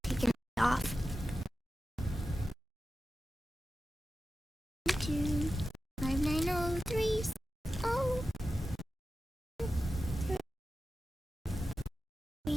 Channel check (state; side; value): normal; both; correlation 0.93